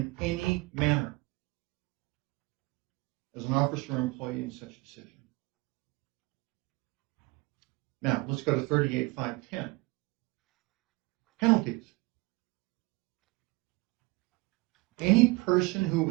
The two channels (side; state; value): left; quieter; 24.2 dB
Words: any manner as an officer or employee in such decision. Now, let's go to 38.510. Penalties. Any person who